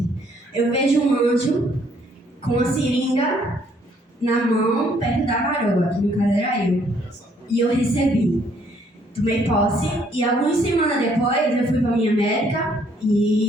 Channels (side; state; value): both; normal; correlation 0.66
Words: eu vejo um anjo com a seringa na mão, perto da varoa, que no caso era eu, e eu recebi, tomei posse, e algumas semanas depois eu fui para minha médica,